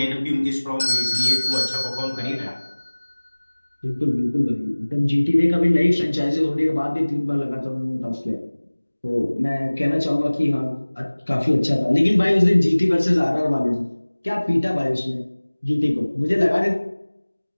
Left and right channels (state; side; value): inverted; both; correlation -1.00